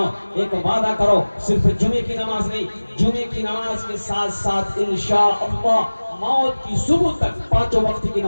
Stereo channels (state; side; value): inverted; both; correlation -1.00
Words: एक वादा करो, सिर्फ जुमे की नमाज नहीं, जुमे की नमाज के साथ साथ इंशाअल्लाह मौत की सुबह तक 5 वक्त की